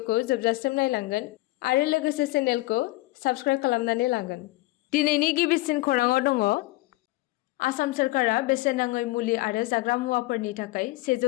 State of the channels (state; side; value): quieter; right; 19.4 dB